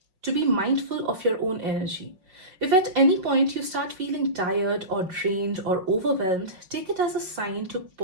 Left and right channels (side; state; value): left; late; 5.5 ms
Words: to be mindful of your own energy. If at any point you start feeling tired or drained or overwhelmed, take it as a sign to